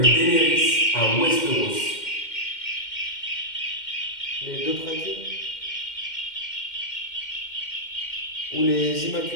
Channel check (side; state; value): right; late; 2.1 ms